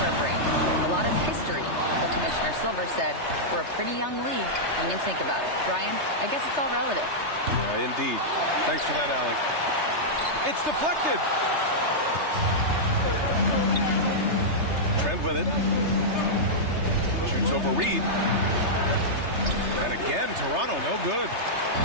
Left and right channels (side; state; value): left; late; 3.3 ms